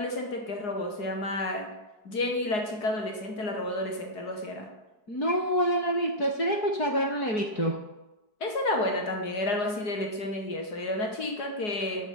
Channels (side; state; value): right; late; 4.8 ms